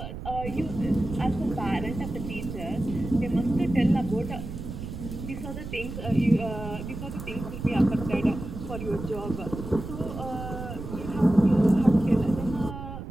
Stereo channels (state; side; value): noise; right; rumble, 9 dB below the sound